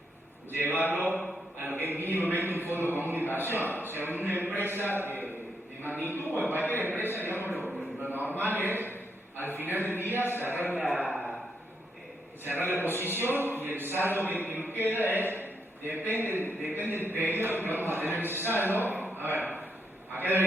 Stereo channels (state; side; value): normal; both; correlation 0.79